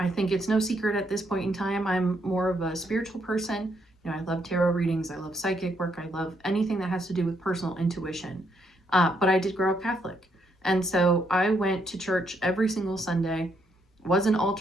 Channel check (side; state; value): both; normal; correlation 0.75